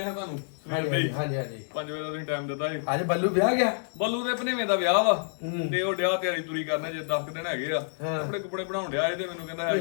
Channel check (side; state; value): right; silent; digital silence